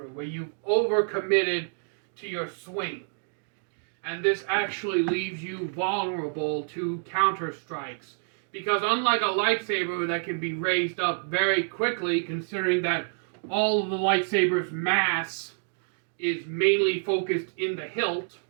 where you've overcommitted to your swing. And this actually leaves you vulnerable to counter strikes, because unlike a lightsaber that can be raised up very quickly, considering that all of the lightsaber's mass is mainly focused in the hilt,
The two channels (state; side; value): silent; left; digital silence